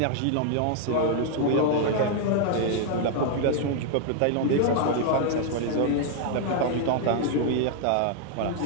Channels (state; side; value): different; both; correlation 0.00